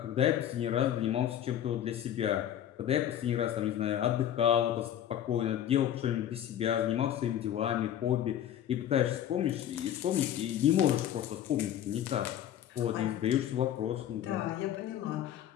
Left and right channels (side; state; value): right; quieter; 10.8 dB